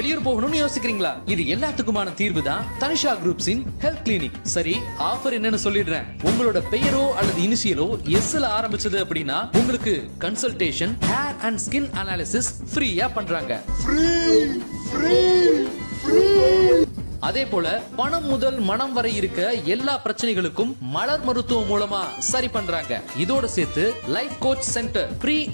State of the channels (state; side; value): inverted; both; correlation -1.00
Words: போகணும்னு யோசிக்கிறீங்களா? இது எல்லாத்துக்குமான தீர்வு தான் தனிஷா குரூப்ஸின் ஹெல்த் கிளினிக். சரி, ஆஃபர் என்னன்னு சொல்லிடுறேன். உங்களோட பெயரோ அல்லது இனிஷியலோ எஸ்ல ஆரம்பிச்சது அப்படின்னா உங்களுக்கு consultation, hair and skin analysis ஃப்ரீயா பண்றாங்க. அதே போல பணம் முதல் மனம் வரை இருக்க எல்லா பிரச்சனைகளுக்கும் மலர் மருத்துவம் மூலமா சரி பண்றாங்க. இதோட சேர்த்து life coach centre, pre